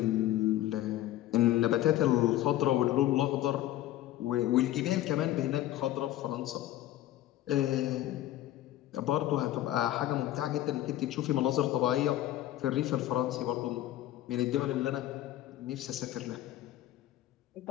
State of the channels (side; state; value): right; quieter; 13.9 dB